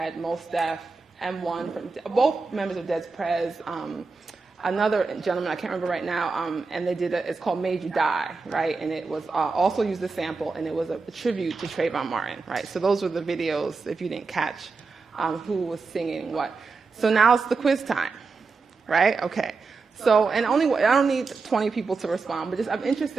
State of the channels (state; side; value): quieter; left; 4.3 dB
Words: Mos Def, M1, from both members of Dead's Prez, another gentleman, I can't remember right now, and they did it's called Made You Die, right? And it was also used a sample, and it was a tribute to Trayvon Martin, right? So those were the videos, if you didn't catch who was singing what. So now it's the quiz time, right? Okay. So, and I don't need 20 people to respond, but I'm